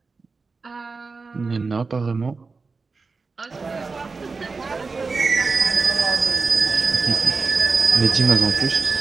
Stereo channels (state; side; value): quieter; left; 4.3 dB